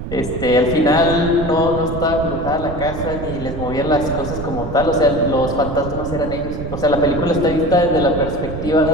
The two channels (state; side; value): noise; right; rumble, 7 dB below the sound